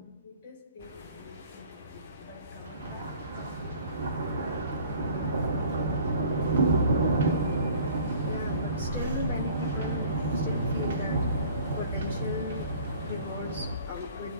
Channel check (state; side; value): inverted; both; correlation -0.49